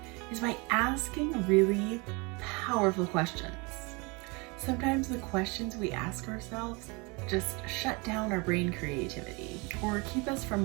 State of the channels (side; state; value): left; quieter; 28.3 dB